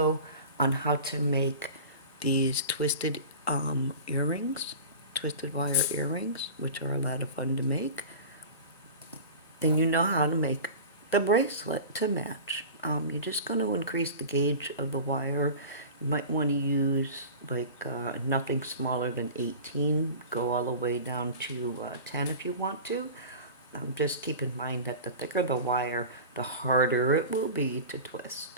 on how to make these twisted earrings, twisted wire earrings, which are a lot of fun to make, then you know how to make the bracelet to match. You're just going to increase the gauge of the wire. You might want to use like nothing smaller than 18. Go all the way down to 10 if you want to. Just keep in mind that the thicker the wire, the harder it will be to twist.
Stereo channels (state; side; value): inverted; both; correlation -0.35